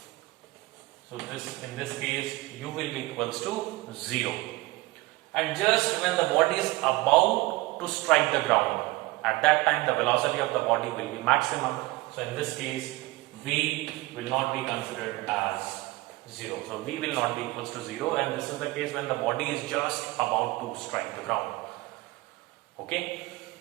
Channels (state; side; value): quieter; left; 20.9 dB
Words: So in this case, u will be equals to 0. And just when the body is about to strike the ground, at that time the velocity of the body will be maximum. So in this case, V will not be considered as 0. So V will not be equals to 0, and this is the case when the body is just about to strike the ground. Okay.